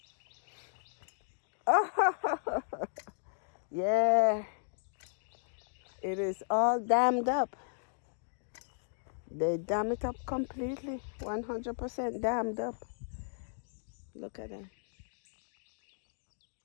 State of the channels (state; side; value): silent; right; digital silence